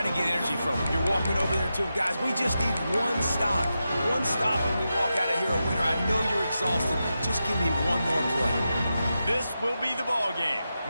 to get energy from them. You're walking over there, too. Guys, we just need one stop. One stop and we walk out of here a winner. I know you're exhausted. Just give me one more play. This will be the ball game.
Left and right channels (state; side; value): inverted; both; correlation -0.89